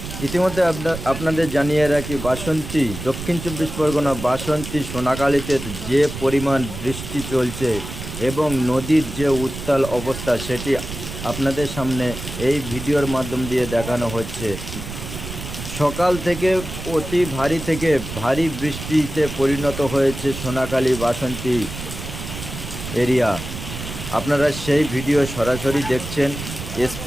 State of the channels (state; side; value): noise; right; rumble, 9 dB below the sound